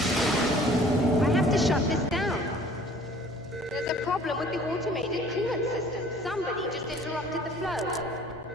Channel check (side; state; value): both; normal; correlation 0.52